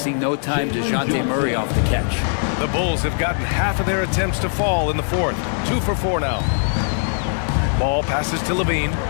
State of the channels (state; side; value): silent; right; 61 dB below the other